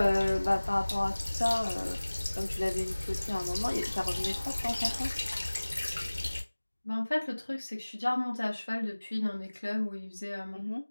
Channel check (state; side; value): inverted; both; correlation -1.00